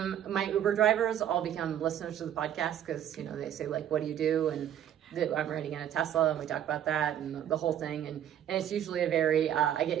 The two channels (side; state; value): left; quieter; 10.3 dB